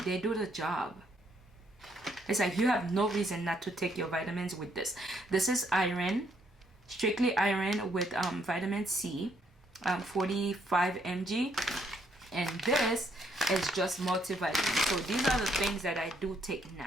they do the job. It's like you have no reason not to take your vitamins with this. This is iron, strictly iron with vitamin C, 45 mg. And this is just multivitamin. So these are the things that I do take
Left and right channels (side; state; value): both; normal; correlation 0.71